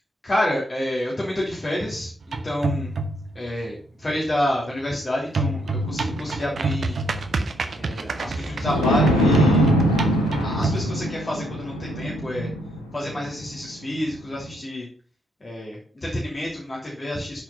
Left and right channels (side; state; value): both; normal; correlation 0.74